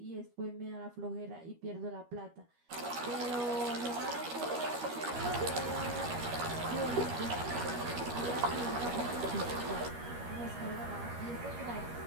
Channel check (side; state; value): left; late; 13 ms